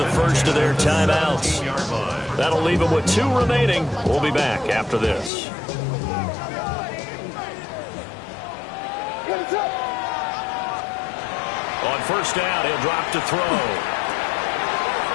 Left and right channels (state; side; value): drops out; right; at 5.3 s